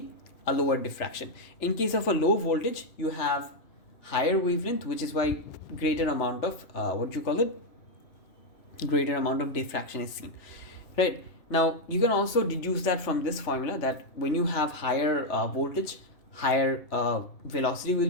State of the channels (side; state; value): right; late; 3.0 ms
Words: a lower diffraction. In case of a low voltage, you have higher wavelength, which is why greater amount of greater amount of diffraction is seen, right? Now you can also deduce that from this formula, that when you have higher voltage, higher velocity will